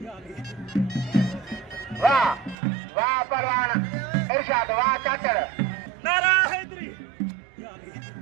Wah Parwan Irsyad, wah Cacar. Nara Hedri.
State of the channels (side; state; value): left; drops out; at 2.6 s